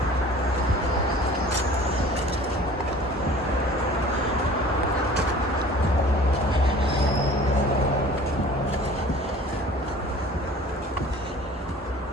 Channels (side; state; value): both; normal; correlation 0.46